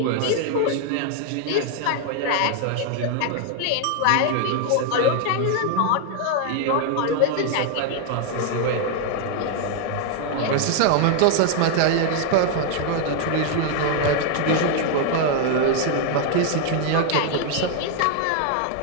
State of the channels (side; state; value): both; different; correlation 0.00